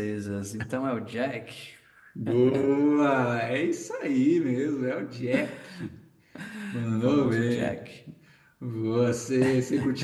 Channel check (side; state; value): both; identical; correlation 1.00